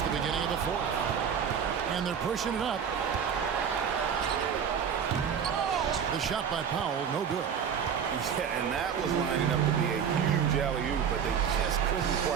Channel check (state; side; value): quieter; left; 7.6 dB